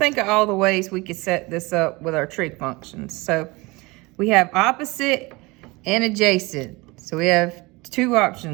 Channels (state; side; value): quieter; left; 23.9 dB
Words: of all the ways we could set this up with our trig functions. So we have opposite and adjacent. So we have 2